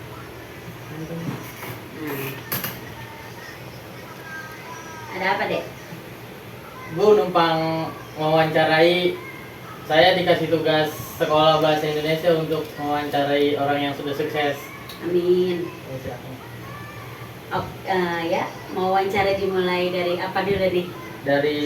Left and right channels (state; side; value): identical; both; correlation 1.00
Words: Ada apa, Dek? Bu numpang mewawancarai. Saya dikasih tugas sekolah bahasa Indonesia untuk mewawancarai orang yang sudah sukses. Amin. Ya, silakan. Oh, ya, mau wawancara dimulai dari apa dulu nih? Dari